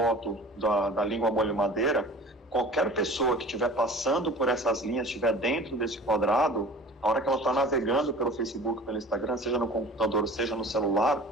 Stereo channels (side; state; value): both; normal; correlation 0.43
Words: da língua molho madeira, qualquer pessoa que estiver passando por essas linhas, estiver dentro desse quadrado, a hora que ela está navegando pelo Facebook, pelo Instagram, seja no computador, seja no celular,